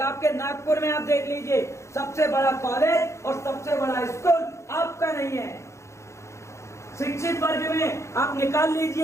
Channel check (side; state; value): right; late; 0.14 ms